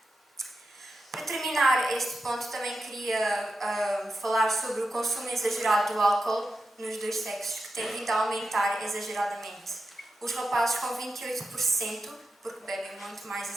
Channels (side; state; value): both; normal; correlation 0.90